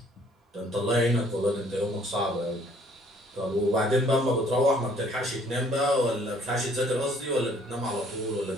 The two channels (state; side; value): normal; both; correlation 0.60